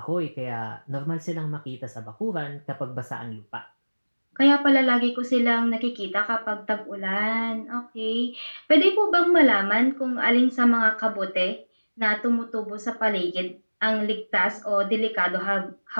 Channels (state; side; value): inverted; both; correlation -1.00